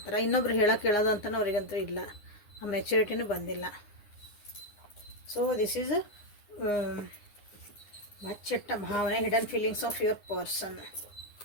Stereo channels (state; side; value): late; right; 9.7 ms